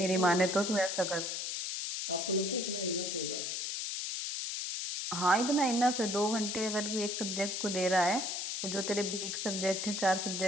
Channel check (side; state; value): left; noise; hiss, 3 dB below the sound